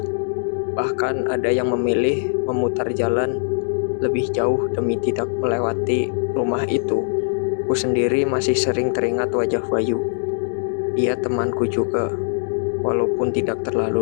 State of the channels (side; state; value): right; silent; digital silence